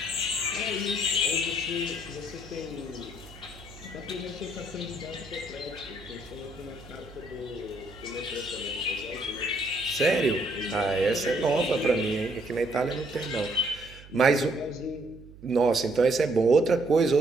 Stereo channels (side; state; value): right; noise; hum, 19 dB below the sound